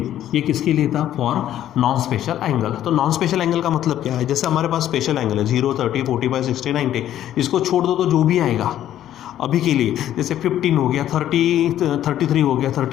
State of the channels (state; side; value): quieter; right; 11.8 dB